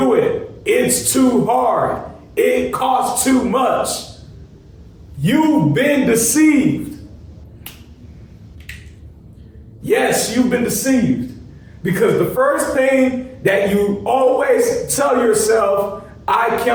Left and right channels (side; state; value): both; identical; correlation 1.00